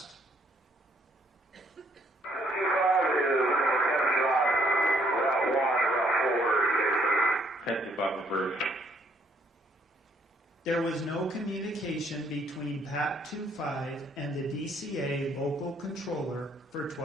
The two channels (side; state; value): both; normal; correlation 0.67